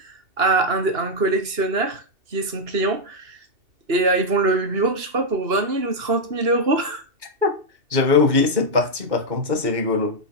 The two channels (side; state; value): left; late; 2.9 ms